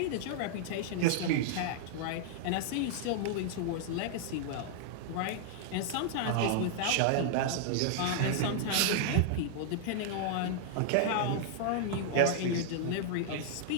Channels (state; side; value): different; both; correlation -0.01